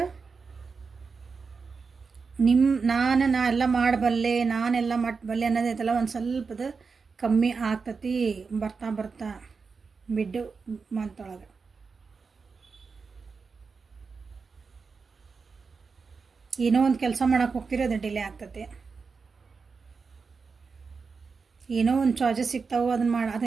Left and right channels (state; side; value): quieter; left; 4.9 dB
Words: ನಾ ಎಲ್ಲ ಮಾಡಬಲ್ಲೆ, ನಾನೆಲ್ಲ ಮಟ್ಟಬಲ್ಲೆ ಅನ್ನೋದೈತಲ್ಲ ಒಂದು ಸ್ವಲ್ಪದ ಕಮ್ಮಿ ಆಗ್ತತಿ ಬರ್ತಾ ಬರ್ತಾ ಮಿಡ್ ಮಂತೊಳಗೆ. ಏನೋ ಒಂದು ಕೆಲಸ ಮಾಡೋಕೆ ಹೋಗ್ತೀರಿ, ಅದು ಡಿಲೇ ಆಗ್ತತಿ. ಏನೋ ಒಂದು ಚಾಯ್ಸಸ್ ಸಿಗ್ತಾವೆ,